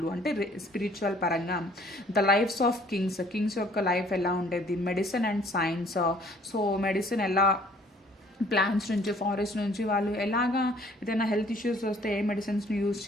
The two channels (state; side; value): normal; both; correlation 0.57